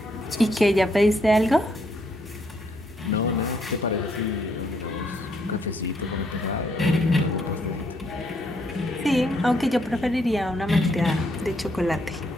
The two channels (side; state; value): both; normal; correlation 0.72